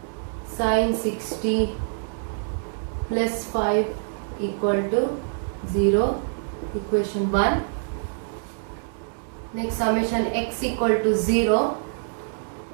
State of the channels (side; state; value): left; silent; 61 dB below the other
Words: sin 60 plus 5 equal to 0. Equation 1. Next, summation x equal to 0